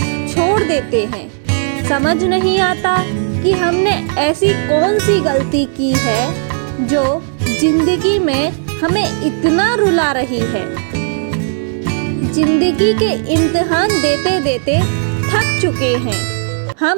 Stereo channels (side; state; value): left; silent; digital silence